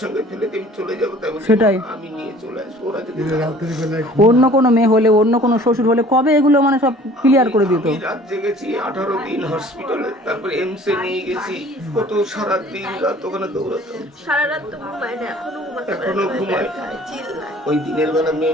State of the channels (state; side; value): normal; both; correlation 0.50